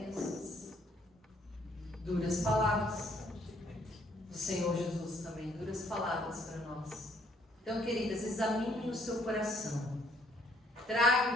Duras palavras do Senhor Jesus também, duras palavras para nós. Então, queridas, examinem o seu coração. Tragam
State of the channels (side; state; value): both; normal; correlation 0.65